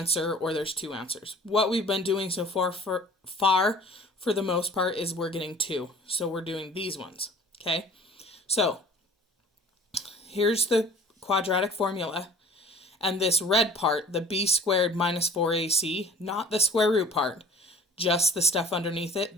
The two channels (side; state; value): both; normal; correlation 0.48